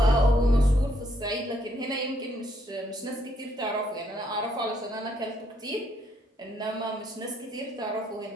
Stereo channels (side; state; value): both; normal; correlation 0.71